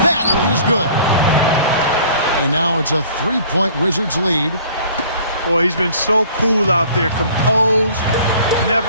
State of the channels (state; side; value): inverted; both; correlation -0.51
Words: That is good. And now it's a 3-point Wizards lead. Boy, he's been so cool out there, composed,